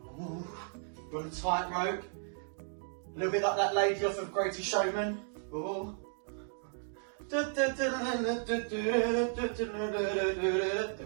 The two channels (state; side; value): silent; left; 55 dB below the other